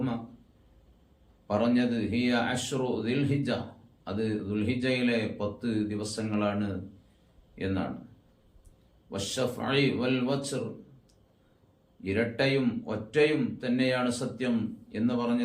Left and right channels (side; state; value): both; identical; correlation 1.00